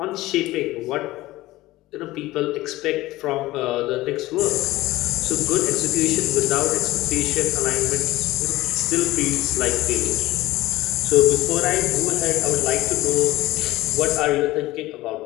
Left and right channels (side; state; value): right; quieter; 17.8 dB